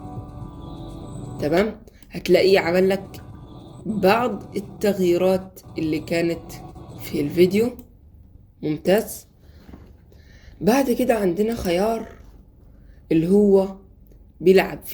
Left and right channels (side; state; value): both; identical; correlation 1.00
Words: تمام، هتلاقيه عمل لك بعض التغييرات اللي كانت في الفيديو. ممتاز. بعد كده عندنا خيار اللي هو بيلعب